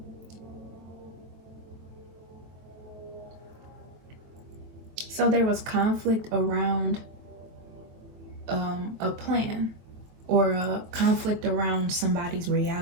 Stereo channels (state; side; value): late; left; 23 ms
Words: So there was conflict around a plan. or a conflict around somebody's